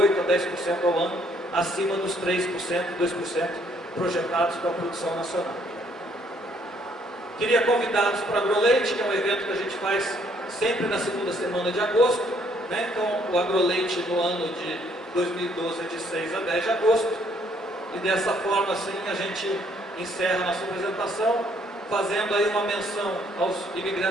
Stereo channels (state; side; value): normal; both; correlation 0.66